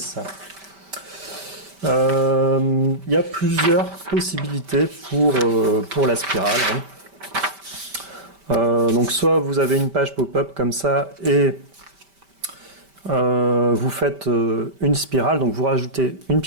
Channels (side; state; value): left; late; 5.1 ms